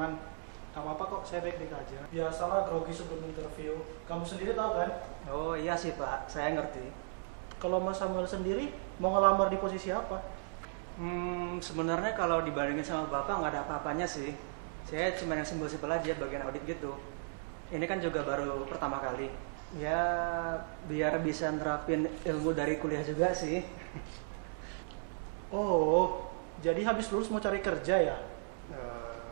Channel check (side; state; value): left; silent; digital silence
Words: Gak apa-apa kok, saya baik-baik aja. Biasalah grogi sebelum interview. Kamu sendiri tahu kan? Oh iya sih Pak, saya ngerti. Kalau Mas Samuel sendiri, mau ngelamar di posisi apa? Sebenarnya kalau dibandingin sama Bapak nggak ada apa-apanya sih. Saya cuma yang simpel-simpel aja, bagian audit gitu. Ini kan juga baru pertama kali. Ya, biar bisa nerapin ilmu dari kuliah juga sih. Oh, jadi habis lulus mau cari kerja ya?